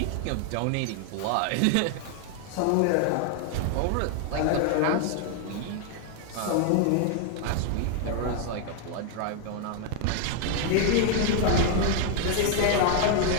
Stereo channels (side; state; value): both; different; correlation 0.00